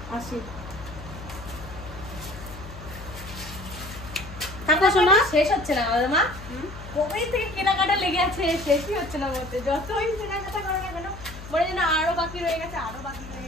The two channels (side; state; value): left; noise; hum, 14 dB below the sound